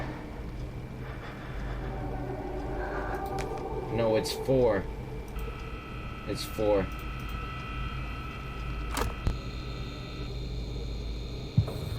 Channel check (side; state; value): both; identical; correlation 1.00